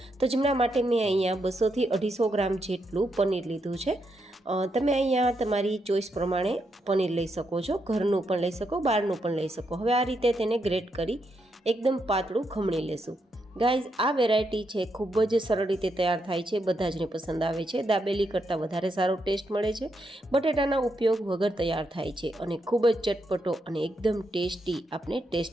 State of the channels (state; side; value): normal; both; correlation 0.81